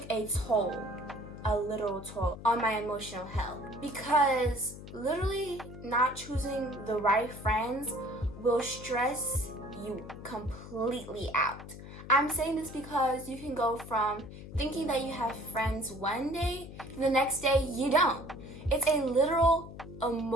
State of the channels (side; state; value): left; noise; hum, 13 dB below the sound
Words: a literal toll on my emotional health. Because literally not choosing the right friends will stress you completely out. I'm saying this because you can go from thinking that you have friends one day, and the next day you don't. It's a literal